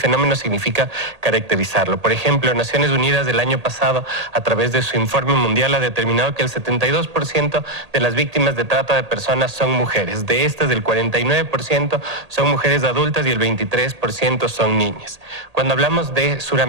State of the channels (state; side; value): late; left; 1.8 ms